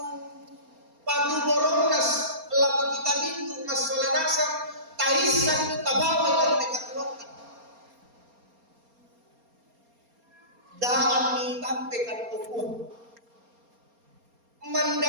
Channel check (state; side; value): late; left; 4.3 ms